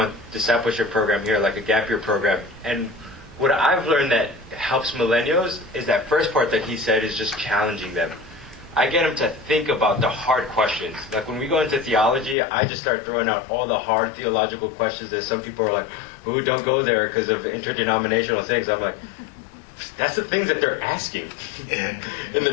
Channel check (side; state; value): right; drops out; at 12.4 s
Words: discipleship program here, like a gap year program. And what I've learned that helps millennials is that first part that he said is just challenging them. I get them to think about the hard questions. Like when we go into theology, I just start throwing out all the hard theological questions that some people are like, ooh, don't go there because of interdenominational things. I'm like, that's the things that they're asking in